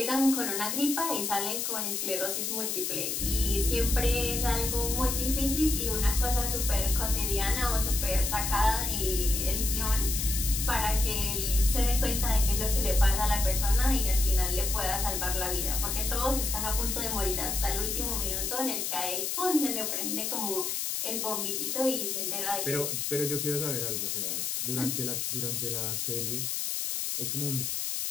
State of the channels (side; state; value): left; noise; hiss, 1 dB below the sound